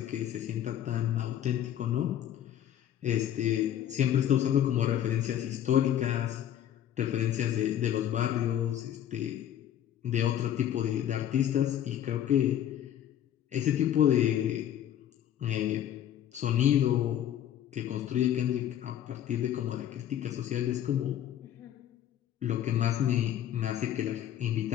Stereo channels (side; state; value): right; quieter; 10.8 dB